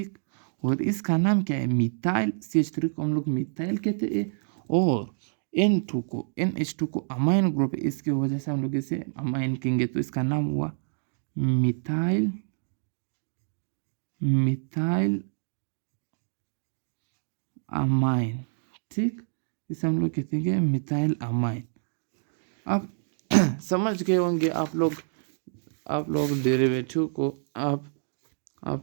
और इसका नाम क्या है, मिथाइल। CH3 को हम लोग मिथाइल कहते हैं और NH2 को अमाइन ग्रुप है, इसकी वजह से हम लोग इसे अमाइन कहेंगे। तो इसका नाम हुआ मिथाइल अमाइन। ठीक, इसे हम लोग कहते हैं मिथाइल अमाइन। अब समझ गए होंगे आप लोग डेरिवेटिव को।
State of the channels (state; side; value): silent; left; digital silence